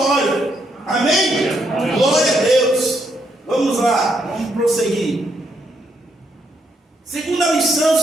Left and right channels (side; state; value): both; normal; correlation 0.76